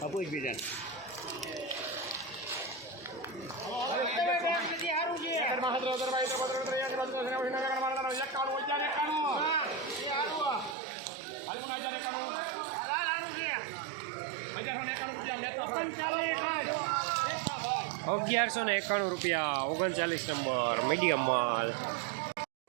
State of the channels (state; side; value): drops out; left; at 10.8 s